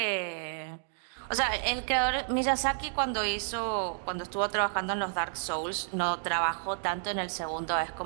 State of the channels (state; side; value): silent; left; digital silence